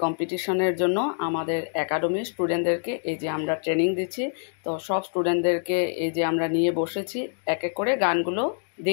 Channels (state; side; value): silent; right; digital silence